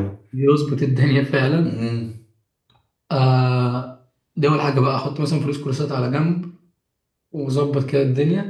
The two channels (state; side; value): identical; both; correlation 1.00